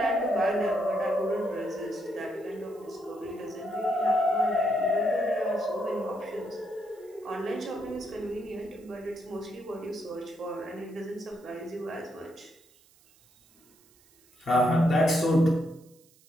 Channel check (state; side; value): noise; right; hiss, 30 dB below the sound